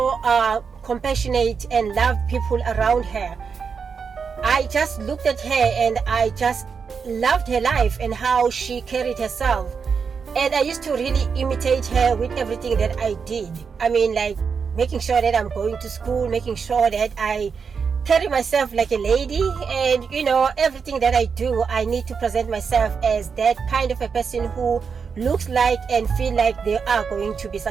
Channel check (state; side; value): quieter; left; 5.9 dB